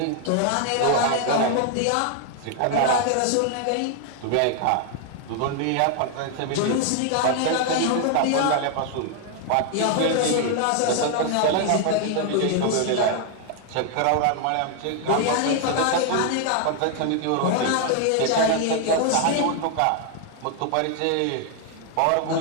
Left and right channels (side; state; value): both; different; correlation 0.00